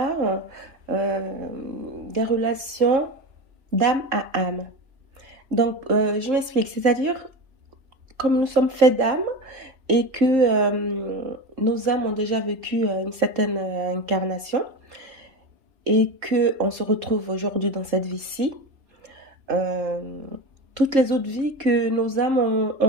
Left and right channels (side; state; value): left; late; 3.7 ms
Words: des relations d'âme à âme. Je m'explique, c'est-à-dire comme nous sommes faits d'âme et que nos âmes ont déjà vécu une certaine incarnation et qu'on se retrouve aujourd'hui dans cette vie-ci. Toutes les autres vies que nos âmes